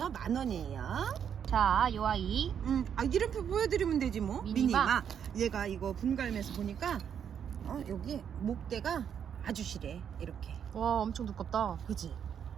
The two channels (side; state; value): left; quieter; 8.2 dB